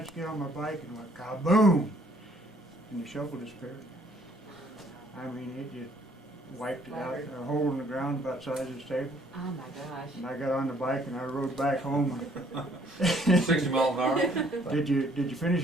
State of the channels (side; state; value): both; normal; correlation 0.62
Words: get on my bike, and went kaboom! And the shovel disappeared. I mean, it just wiped it out, a hole in the ground about the size of this table. Oh my gosh. And I got on the bike and I rode back home. 60 miles an hour. Did you finish